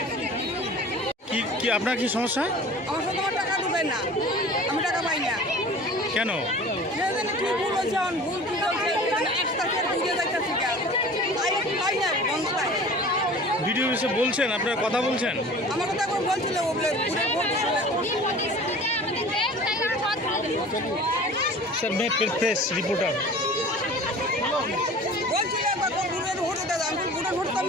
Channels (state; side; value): normal; both; correlation 0.42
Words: কি আপনার কি সমস্যা? আমার সাথে আমার টাকা ঢুকে না, আমি টাকা পাই না। কেন? কি ভুল হয়েছে, ভুল কি হয়েছে, ভিডিও এসে বলছেন, আপনারা কথা বলছেন? আমার কথা এখন বলছিল স্যার मैं प्रेस रिपोर्टर বলছিল ভোট দাদা, আমি ভোটের ভোট তো